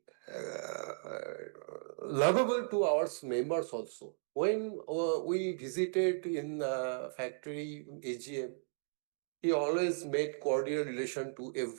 lovable to our members also. When we visited in factory AGM, he always made cordial relation to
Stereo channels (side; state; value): left; silent; digital silence